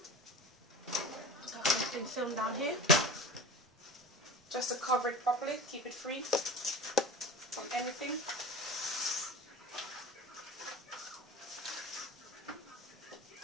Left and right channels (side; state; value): both; normal; correlation 0.34